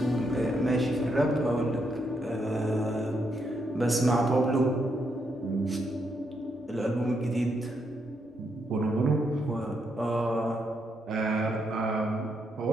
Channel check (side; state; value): both; normal; correlation 0.79